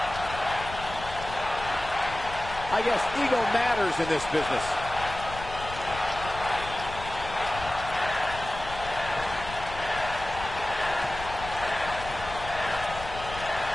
I guess ego matters in this business.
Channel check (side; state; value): left; noise; rumble, 11 dB below the sound